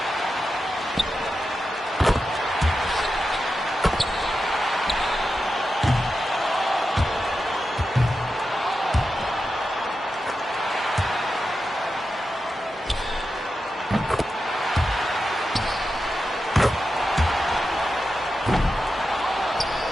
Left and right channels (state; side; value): normal; both; correlation 0.90